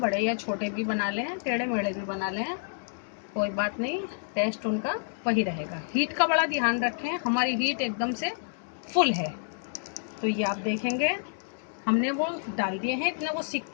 या छोटे भी बना लें, टेढ़े मेढ़े भी बना लें, कोई बात नहीं, टेस्ट उनका वही रहेगा। हीट का बड़ा ध्यान रखें, हमारी हीट एकदम से फुल है। तो ये आप देखेंगे हमने वो डाल दिए हैं, इतने वो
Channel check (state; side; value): silent; right; digital silence